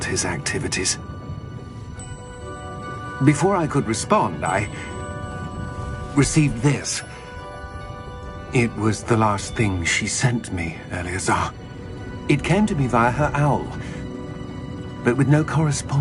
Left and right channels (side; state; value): both; identical; correlation 1.00